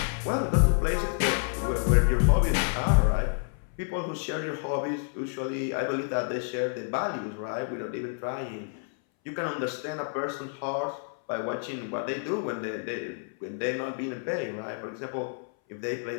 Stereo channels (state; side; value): silent; right; 59 dB below the other